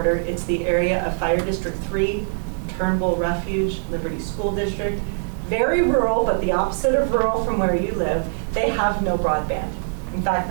It's the area of Fire District 3, Turnbull Refuge, Liberty School District. Very rural, but the opposite of rural from where you live. They have no broadband. In fact,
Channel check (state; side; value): silent; left; 64 dB below the other